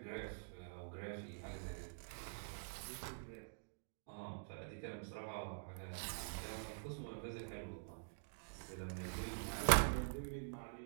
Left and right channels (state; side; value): silent; left; digital silence